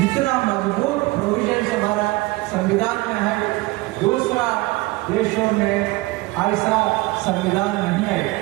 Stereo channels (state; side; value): quieter; left; 21.4 dB